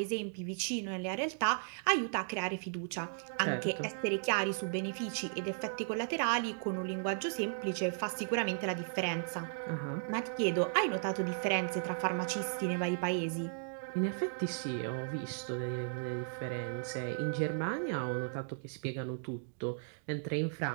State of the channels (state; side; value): silent; left; digital silence